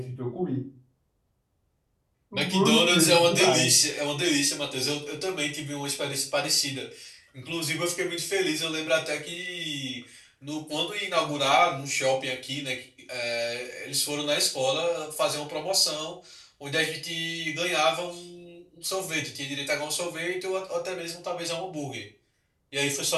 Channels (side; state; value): both; identical; correlation 1.00